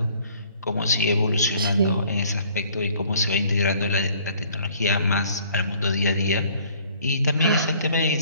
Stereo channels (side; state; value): both; inverted; correlation -0.57